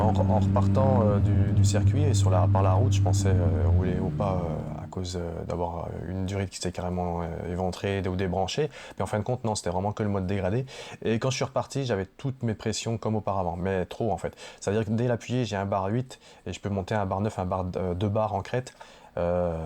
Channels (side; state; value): both; identical; correlation 1.00